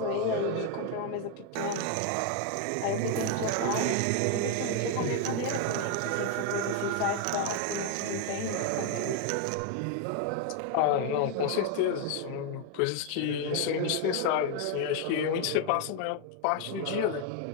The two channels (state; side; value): different; both; correlation 0.01